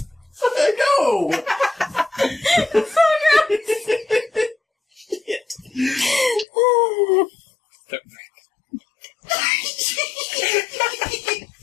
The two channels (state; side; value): drops out; right; at 6.5 s